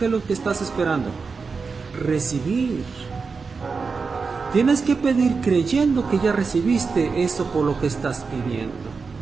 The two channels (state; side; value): quieter; left; 4.8 dB